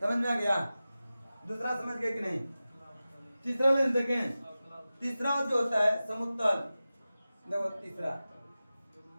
समझ में आ गया। दूसरा समझ गए कि नहीं। तीसरा लेंस देखें, तीसरा जो होता है समुत्तल। देखो तीसरा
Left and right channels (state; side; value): inverted; both; correlation -0.95